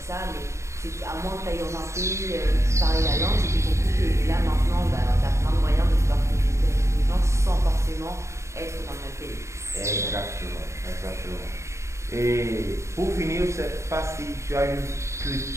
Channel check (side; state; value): left; late; 0.14 ms